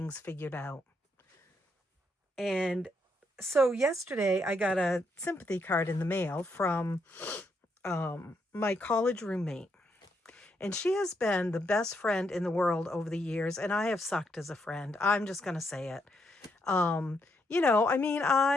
figured out. And so yesterday I got a sympathy card in the mail from my college roommate. And she has been the best friend in the world over the years, and I have sucked as a friend. I'm just going to say it. You know, I mean,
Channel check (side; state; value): both; normal; correlation 0.77